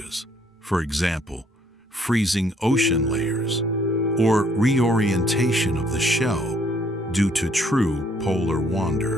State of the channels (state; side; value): normal; both; correlation 0.65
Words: for example, freezing ocean layers, or reorientation of the shell due to true polar